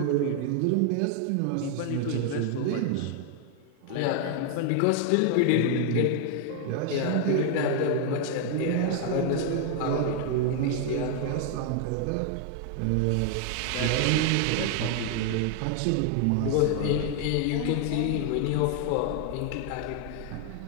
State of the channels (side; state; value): both; different; correlation 0.00